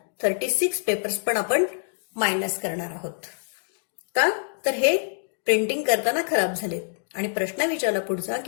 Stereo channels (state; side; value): silent; right; digital silence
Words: 36 पेपर्स पण आपण मायनस करणार आहोत. का? तर हे प्रिंटिंग करताना खराब झालेत. आणि प्रश्न विचारला पुढचा